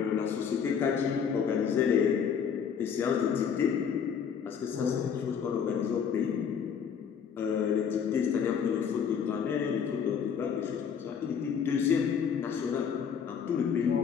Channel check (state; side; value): quieter; right; 7.2 dB